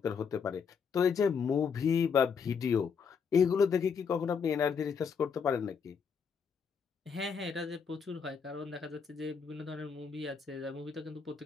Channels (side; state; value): right; quieter; 6.2 dB